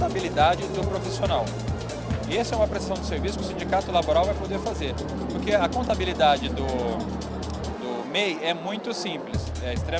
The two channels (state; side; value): identical; both; correlation 1.00